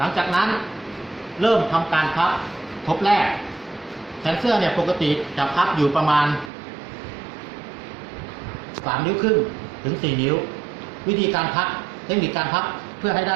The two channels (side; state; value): left; drops out; at 6.5 s